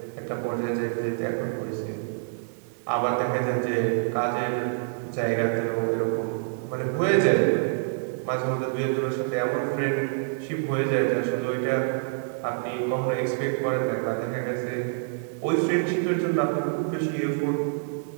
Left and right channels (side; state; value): left; silent; digital silence